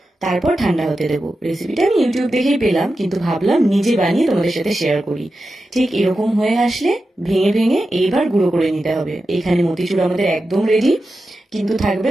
তারপর ঠান্ডা হতে দেবো। রেসিপিটা আমি ইউটিউব দেখেই পেলাম, কিন্তু ভাবলাম নিজে বানিয়ে তোমাদের সাথে শেয়ার করি। ঠিক এরকম হয়ে আসলে ভেঙে ভেঙে এইবার গুঁড়ো করে নিতে হবে। এখানে মতিচুর আমাদের একদম রেডি, কিন্তু থাকবে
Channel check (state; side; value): normal; both; correlation 0.91